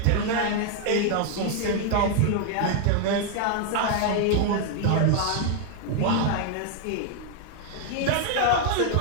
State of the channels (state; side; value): different; both; correlation 0.00